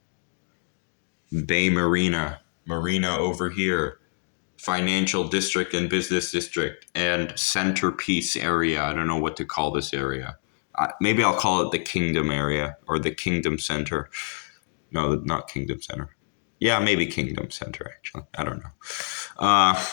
Bay Marina over here, financial district and business district, and centerpiece area. I don't know what to call this area. Maybe I'll call it the Kingdom area or the Kingdom Center. No, not Kingdom Center. Yeah, maybe Kingdom Center, actually. I don't know.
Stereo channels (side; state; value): right; silent; 61 dB below the other